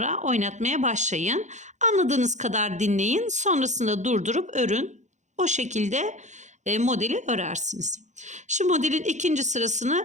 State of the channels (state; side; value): late; left; 0.35 ms